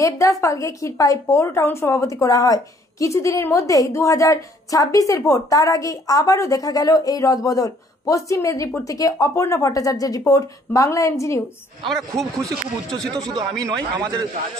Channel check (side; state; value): both; normal; correlation 0.62